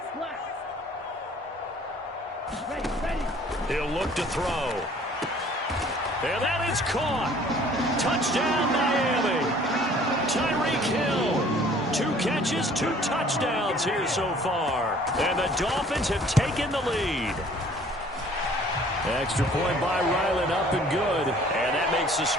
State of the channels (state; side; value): normal; both; correlation 0.54